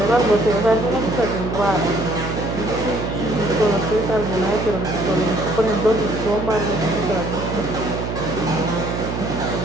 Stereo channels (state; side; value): noise; right; hum, 4 dB below the sound